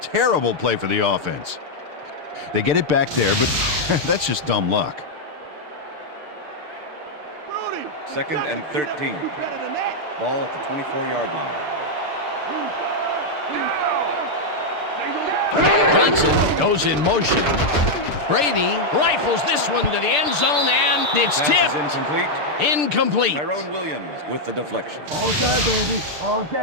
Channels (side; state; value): left; late; 6.7 ms